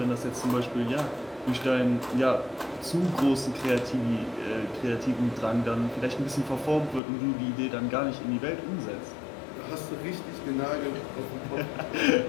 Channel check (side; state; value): right; drops out; at 7.0 s